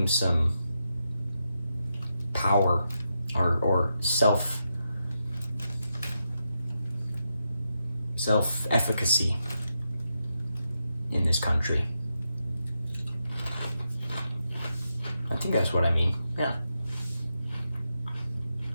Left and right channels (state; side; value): inverted; both; correlation -0.85